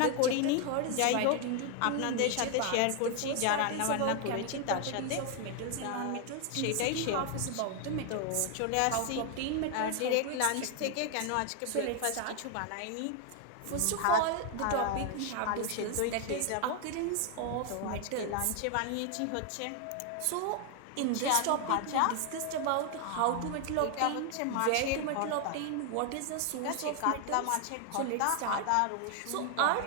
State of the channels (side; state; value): both; different; correlation 0.00